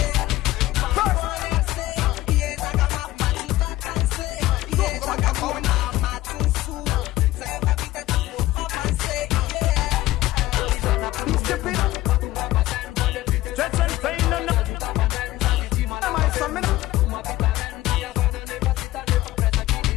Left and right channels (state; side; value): quieter; right; 16.6 dB